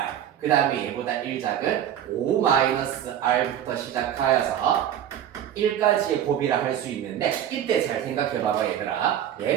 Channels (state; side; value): quieter; left; 10.3 dB